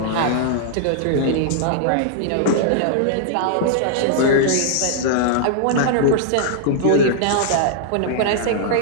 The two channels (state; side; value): different; both; correlation -0.01